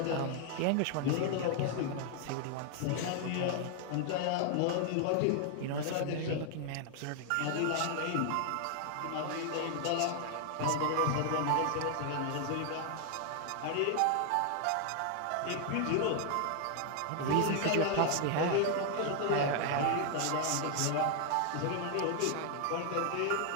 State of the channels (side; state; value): both; different; correlation 0.00